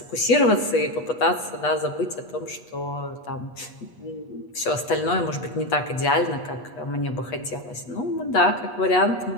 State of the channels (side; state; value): right; late; 8.3 ms